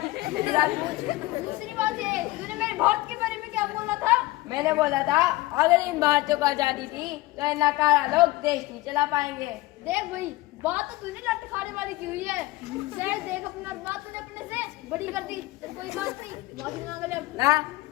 बात ये, तूने मेरे भारत के बारे में क्या बोला था? मैंने बोला था अगर इन भारतीयों को आजादी थी तो इन नाकारा लोग देश नहीं चला पाएंगे। देख भाई, बात तो तूने लट खाने वाली की हुई है। शायद देख अपना बात तूने अपने से बड़ी कर दी, तो कोई बात नहीं, माफी मांग ले अब। ना,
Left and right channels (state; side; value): quieter; right; 19.3 dB